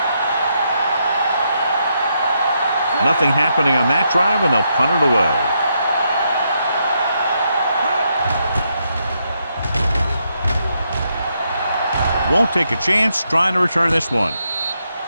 Nothing happening on that drive, and they'll punt it away. Won't take a chance trying to return this one.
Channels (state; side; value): inverted; both; correlation -0.79